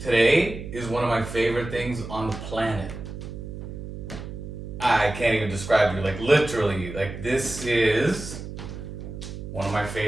today is one of my favorite things on the planet. I can't even describe you, like literally, like this is one of my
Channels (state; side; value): noise; right; hum, 9 dB below the sound